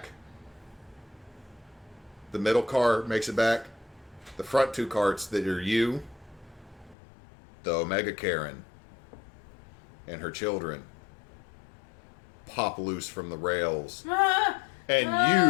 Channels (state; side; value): drops out; right; at 7.0 s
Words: The middle car makes it back. The front two carts that are you, the Omega Karen, and her children pop loose from the rails. And